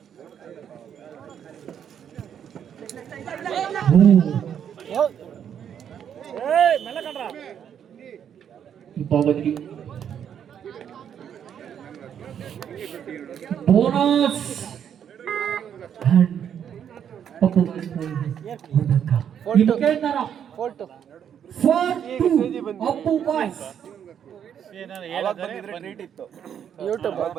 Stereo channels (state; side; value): quieter; left; 8.8 dB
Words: ಭಾಗದಲ್ಲಿ ಬೋನಸ್ ಅಪ್ಪು ಬಾಯ್ಸ್